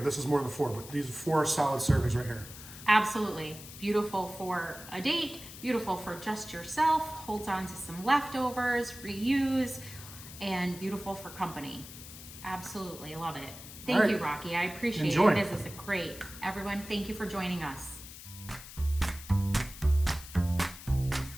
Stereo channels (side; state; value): left; noise; hiss, 14 dB below the sound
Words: This is more than 4, but these are 4 solid servings right here. Absolutely. Beautiful for a date, beautiful for just yourself, holds on to some leftovers, reuse, and beautiful for company. Absolutely, love it. Thank you, Rocky. I appreciate Enjoy. it. This is great. Everyone, thank you for joining us.